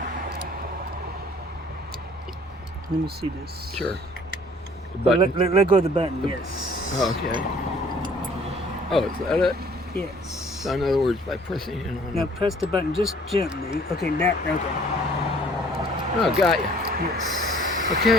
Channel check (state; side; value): normal; both; correlation 0.56